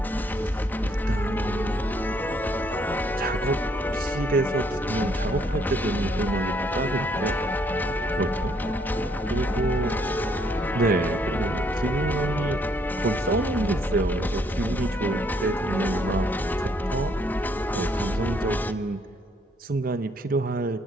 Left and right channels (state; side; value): normal; both; correlation 0.68